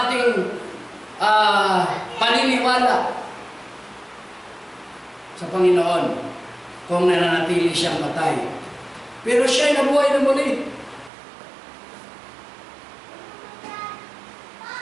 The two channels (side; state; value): left; drops out; at 11.1 s